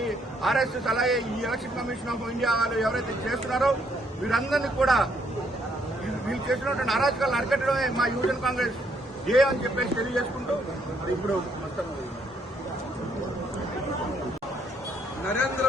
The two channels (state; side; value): normal; both; correlation 0.70